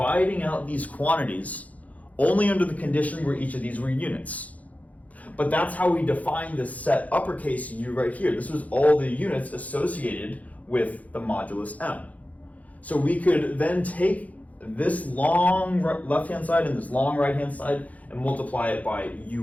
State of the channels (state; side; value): late; right; 0.072 ms